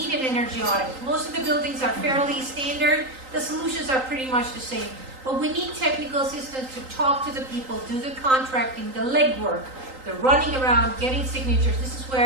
an energy audit. Most of the buildings are fairly standard. The solutions are pretty much the same. But we need technical assistance to talk to the people, do the contracting, the legwork, the running around, getting signatures. This is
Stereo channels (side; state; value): left; late; 3.8 ms